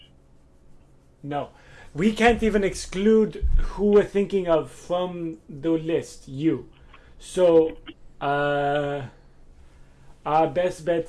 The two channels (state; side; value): identical; both; correlation 1.00